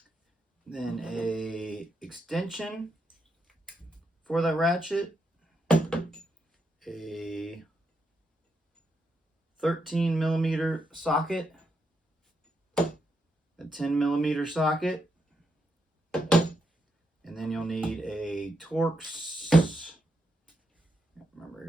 then a extension for that ratchet, a 13mm socket, a 10mm socket, and then you'll need a Torx, remember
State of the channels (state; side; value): normal; both; correlation 0.81